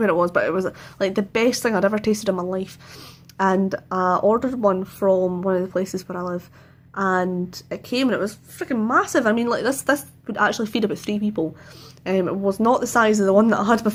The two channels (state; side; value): identical; both; correlation 1.00